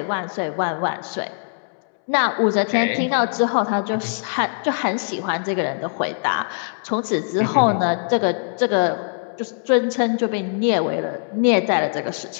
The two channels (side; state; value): right; silent; 64 dB below the other